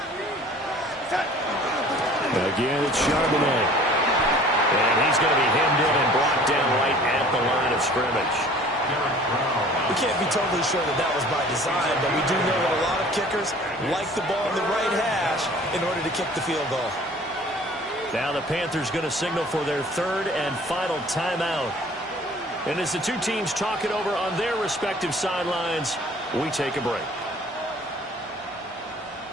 Again, it's Charbonnet. And he's going to be hemmed in and blocked down right at the line of scrimmage. We can't be totally sure that that was by design, but we do know that a lot of kickers like the ball in the right hash in order to kick the field goal. Now the Panthers going to signal for their third and final timeout. And as the two teams talk it over on their respective sidelines, we take a break.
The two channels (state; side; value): normal; both; correlation 0.49